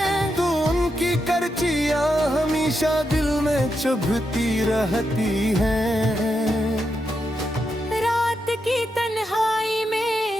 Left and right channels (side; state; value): both; normal; correlation 0.84